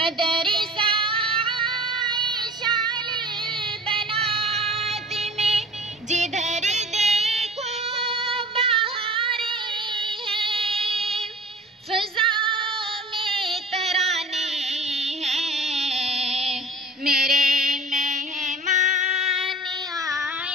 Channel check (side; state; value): both; normal; correlation 0.43